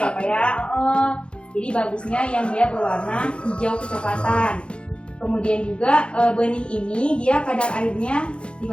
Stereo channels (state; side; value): late; right; 0.057 ms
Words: ya Pak ya. Jadi bagusnya yang dia berwarna hijau kecoklatan. Kemudian juga benih ini dia kadar airnya